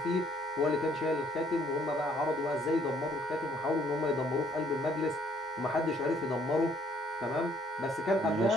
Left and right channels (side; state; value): both; normal; correlation 0.64